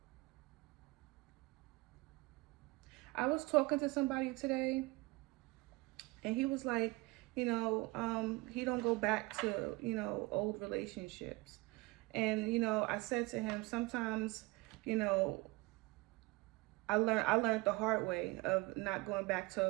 I was talking to somebody today, and he was like, he don't go back to, old relationships. And, I said to him, sometimes, I learned the hard way of not going back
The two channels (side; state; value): left; quieter; 23.4 dB